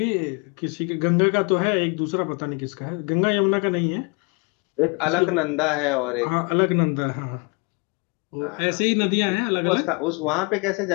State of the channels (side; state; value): right; quieter; 32.1 dB